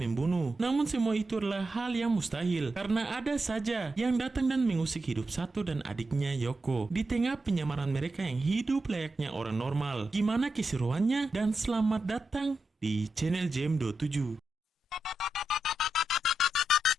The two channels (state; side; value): normal; both; correlation 0.88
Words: Namun semua itu adalah hal yang mustahil karena ada saja yang datang dan mengusik hidup Sato dan adiknya Yoko. Di tengah penyamaran mereka yang hidup layaknya orang normal. Gimana keseruannya? Dan selamat datang di channel Jam27.